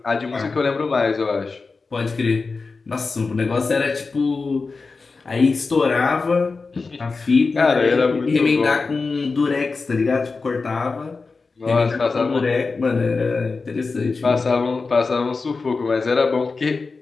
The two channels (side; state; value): right; quieter; 4.2 dB